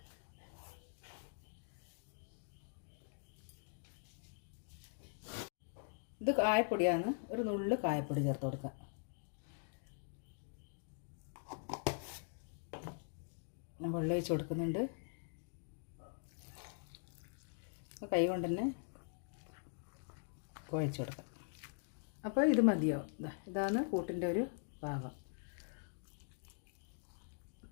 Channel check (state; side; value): silent; right; digital silence